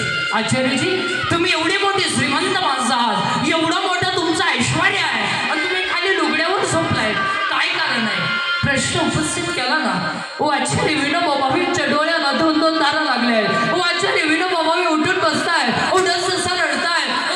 आचार्यजी, तुम्ही एवढी मोठी श्रीमंत माणसं आहात, एवढं मोठं तुमचं ऐश्वर्य आहे आणि तुम्ही खाली लुगड्यावर झोपलाय, काय कारण आहे? प्रश्न उपस्थित केला ना. ओ आचार्य विनोबाबांच्या डोळ्याला 2-2 तारा लागल्या आहेत. ओ आचार्य विनोबाबा उठून बसताय, ओ डससा रडताय. ओ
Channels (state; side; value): identical; both; correlation 1.00